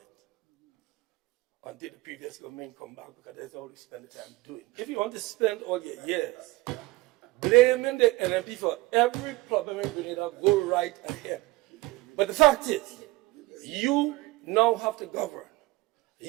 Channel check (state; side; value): quieter; left; 20.0 dB